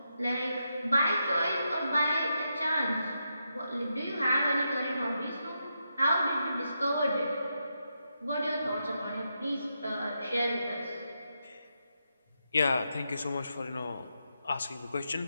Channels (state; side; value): inverted; both; correlation -0.84